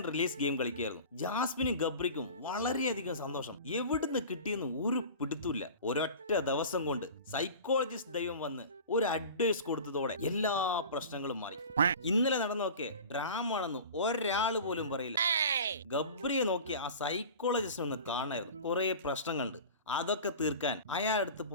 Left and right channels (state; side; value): inverted; both; correlation -0.37